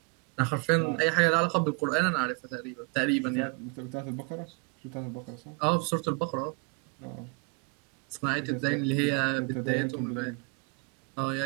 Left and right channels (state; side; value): quieter; left; 33.1 dB